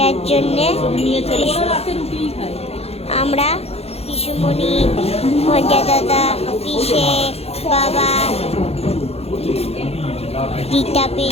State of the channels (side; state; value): right; late; 0.29 ms